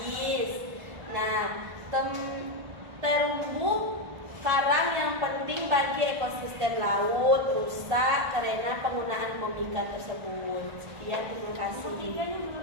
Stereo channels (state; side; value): late; left; 1.5 ms